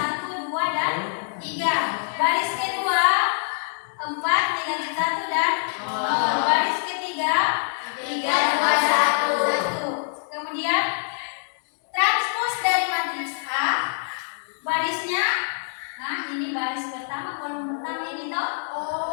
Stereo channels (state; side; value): silent; right; digital silence